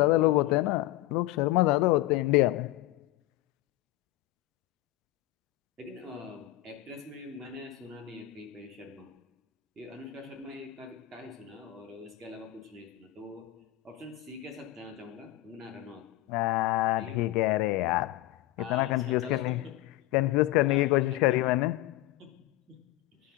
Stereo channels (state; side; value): quieter; right; 16.4 dB